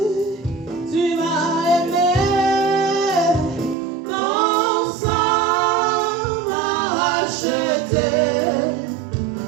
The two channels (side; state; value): left; drops out; at 3.8 s